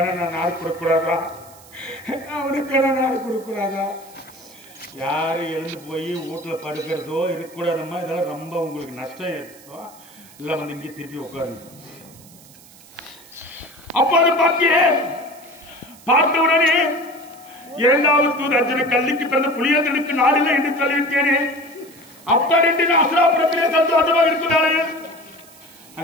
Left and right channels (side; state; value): right; noise; hiss, 23 dB below the sound